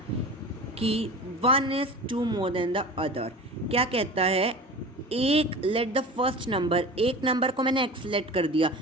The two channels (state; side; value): normal; both; correlation 0.35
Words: कि 1 is 2 more than the other। क्या कहता है, एक लेट द फर्स्ट नंबर, एक नंबर को मैंने x लेट कर दिया